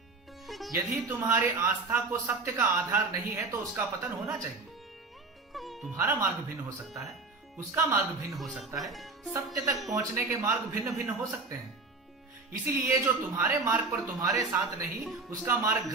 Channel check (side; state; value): left; quieter; 3.9 dB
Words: यदि तुम्हारी आस्था को सत्य का आधार नहीं है तो उसका पतन होना चाहिए। तुम्हारा मार्ग भिन्न हो सकता है, उसका मार्ग भिन्न हो सकता है, सत्य तक पहुंचने के मार्ग भिन्न भिन्न हो सकते हैं। इसीलिए जो तुम्हारे मार्ग पर तुम्हारे साथ नहीं, उसका मार्ग